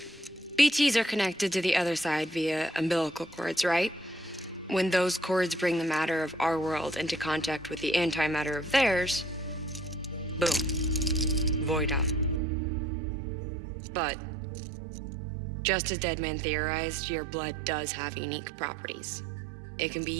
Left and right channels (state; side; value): drops out; left; at 12.4 s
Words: BTs are connected to the other side via umbilical cords, right? When those cords bring the matter of our world into contact with the antimatter of theirs, boom, void out. But, just as Deadman theorized, your blood does have unique properties. It can be